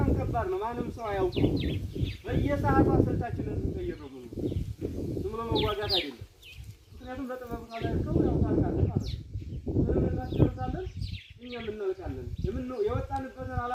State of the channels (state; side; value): identical; both; correlation 1.00